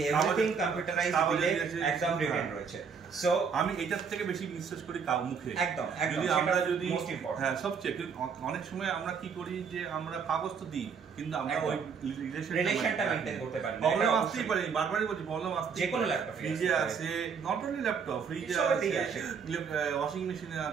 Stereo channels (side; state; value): left; quieter; 6.2 dB